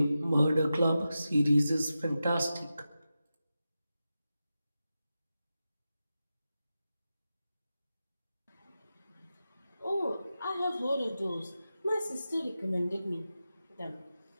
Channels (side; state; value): both; inverted; correlation -0.92